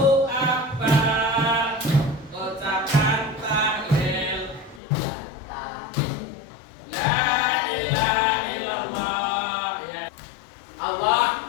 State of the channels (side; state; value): right; drops out; at 4.8 s